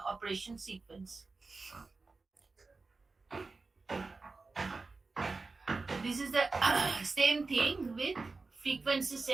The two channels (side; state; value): left; quieter; 3.9 dB